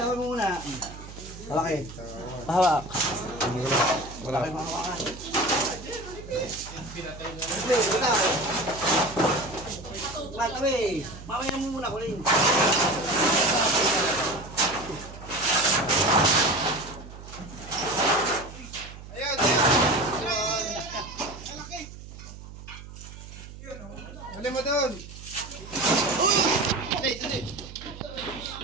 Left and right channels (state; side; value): noise; right; hum, 14 dB below the sound